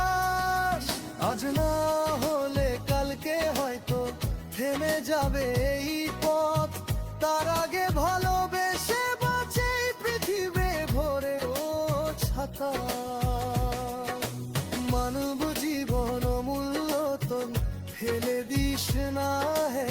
আজ না হলে কালকে হয়তো থেমে যাবে এই পথ। তার আগে ভালোবেসে বাঁচে পৃথিবী ভরে ও ছাতা। মানব জীবন অমূল্য তো ফেলে দিস না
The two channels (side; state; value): both; identical; correlation 1.00